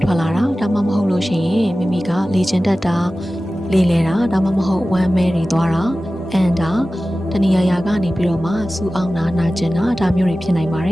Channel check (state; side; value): normal; both; correlation 0.96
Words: ထွက်လာတာဒါမှမဟုတ်လို့ရှိရင်မိမိကလေ့ကျင့်တတ်တာလေ့လဲတာဒါမှမဟုတ်ဝမ်းမဲတွေသွားတာအန်တာတဏှာရာကနေပြီးတော့မှစူအောင်နာကျင်တာဒါမျိုးတွေဖြစ်နိုင်ပါတ